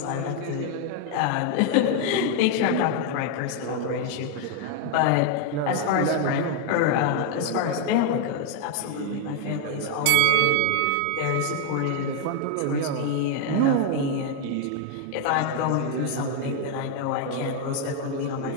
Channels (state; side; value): different; both; correlation 0.01